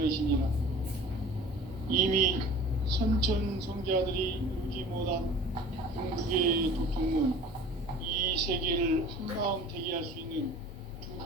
이미 선천성자들이 이루지 못한 궁극의 도통문, 이 세계를 한마음 되게 할 수 있는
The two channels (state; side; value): normal; both; correlation 0.43